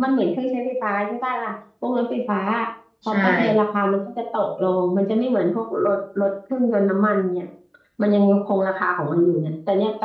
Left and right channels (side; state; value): both; identical; correlation 1.00